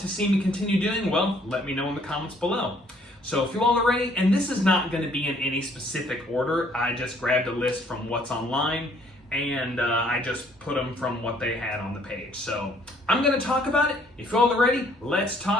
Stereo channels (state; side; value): normal; both; correlation 0.62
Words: to see me continue doing, well, let me know in the comments below. So if you all are ready, and this is not going to be in any specific order, I just grabbed a list from what's online, and I just put them from what they had on the page. So I'm going to talk about it. If you all are ready, let's